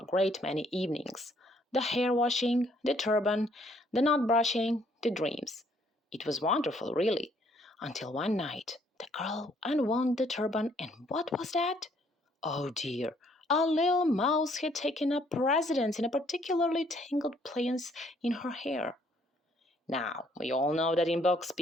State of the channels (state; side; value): normal; both; correlation 0.65